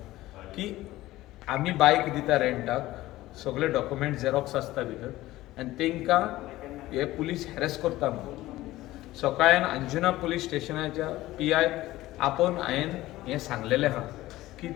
की आमी बायक दिता रेंटाक सगळे डॉक्युमेंट झेरॉक्स आसता भितर आनी तांकां हे पुलीस हॅरस करता म्हणून. सकाळीन अंजुना पुलीस स्टेशनाच्या PI आपोवन हांवें हें सांगलेलें आहा की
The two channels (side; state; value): right; quieter; 16.8 dB